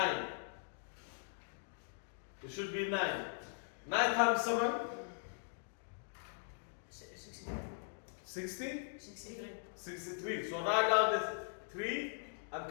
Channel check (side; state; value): right; silent; digital silence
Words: It should be 9. 9 times 7? 63. 60? 63. 63. So write down the 3